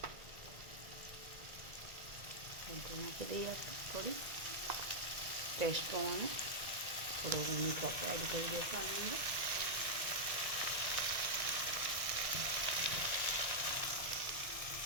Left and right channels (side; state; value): left; late; 1.9 ms